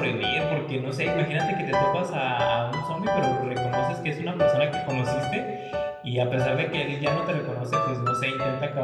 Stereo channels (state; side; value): identical; both; correlation 1.00